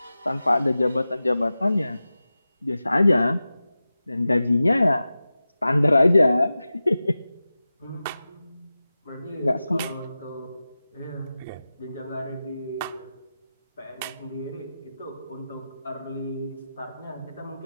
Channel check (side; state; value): both; inverted; correlation -0.94